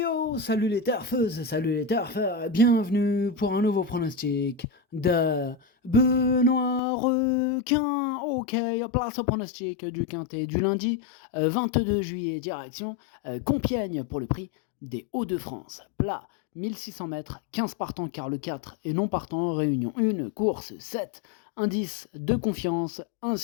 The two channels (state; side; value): drops out; right; at 6.8 s